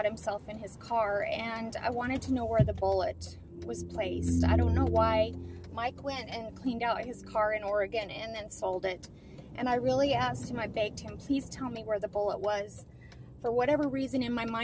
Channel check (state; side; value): identical; both; correlation 1.00